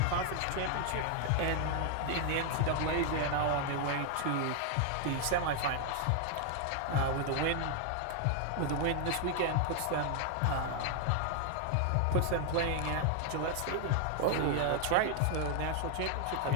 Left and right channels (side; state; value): both; different; correlation 0.00